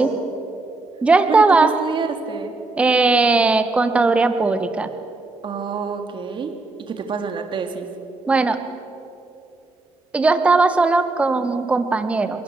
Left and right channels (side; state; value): left; quieter; 3.3 dB